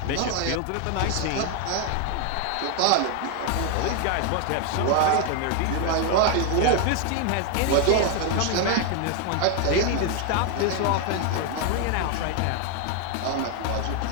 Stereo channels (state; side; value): different; both; correlation 0.01